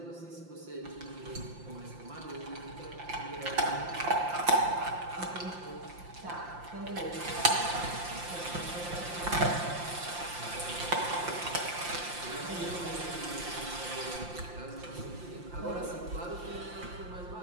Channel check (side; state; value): left; late; 5.7 ms